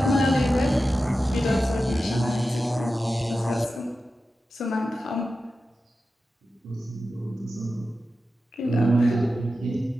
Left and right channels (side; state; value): both; normal; correlation 0.92